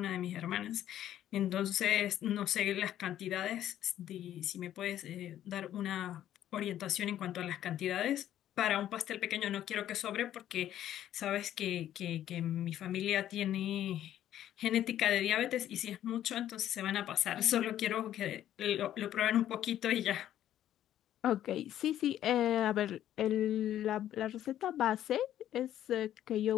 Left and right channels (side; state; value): right; quieter; 11.7 dB